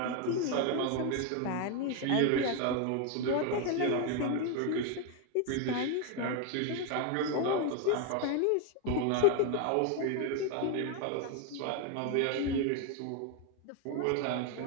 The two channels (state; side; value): different; both; correlation 0.01